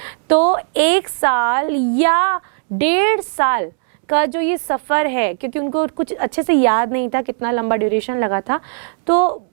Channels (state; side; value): silent; left; 58 dB below the other